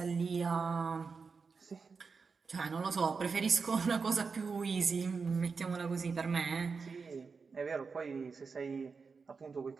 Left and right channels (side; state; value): left; quieter; 5.0 dB